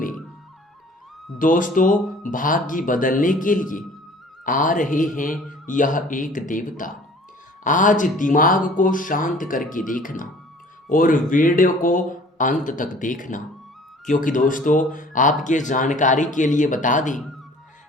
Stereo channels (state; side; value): normal; both; correlation 0.50